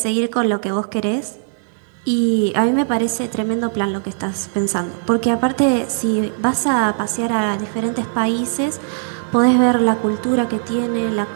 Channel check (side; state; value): left; silent; digital silence